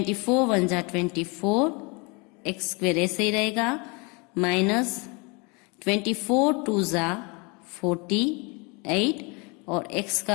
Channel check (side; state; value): right; quieter; 29.7 dB